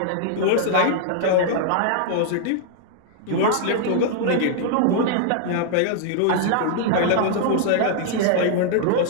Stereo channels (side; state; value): both; different; correlation -0.01